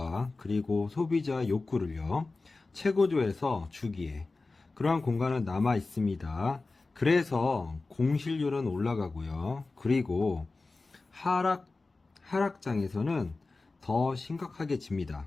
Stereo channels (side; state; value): right; quieter; 3.6 dB